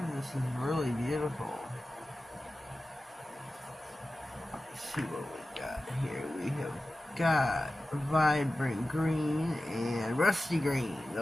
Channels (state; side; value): normal; both; correlation 0.94